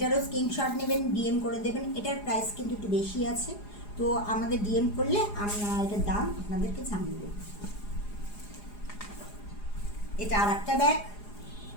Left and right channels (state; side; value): late; right; 4.9 ms